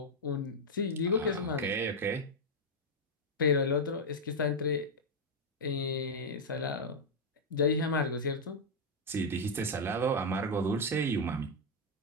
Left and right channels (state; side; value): normal; both; correlation 0.00